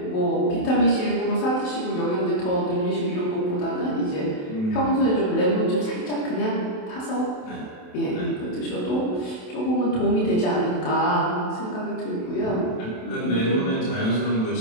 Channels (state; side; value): late; right; 27 ms